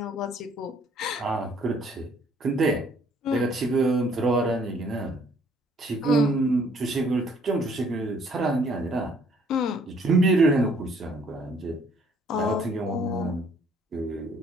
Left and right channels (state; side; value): normal; both; correlation 0.61